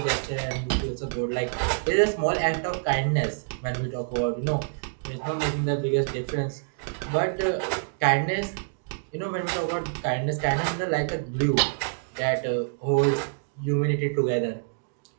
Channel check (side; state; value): left; silent; digital silence